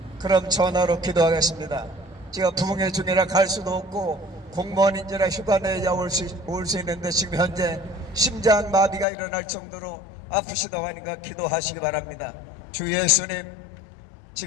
그럼 전화로 기도하겠습니다. 제가 부흥회 중이라 갈 수도 없고 공무원인지라 휴가 내야 올 수 있는데 지금 현재 심장 마비가 일어날 정도로 아프시다고 하니까 기도하시기 바랍니다. 주 예수님,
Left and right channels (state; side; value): drops out; right; at 9.1 s